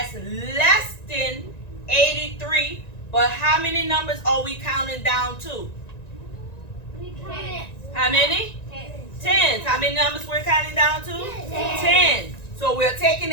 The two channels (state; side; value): late; right; 1.9 ms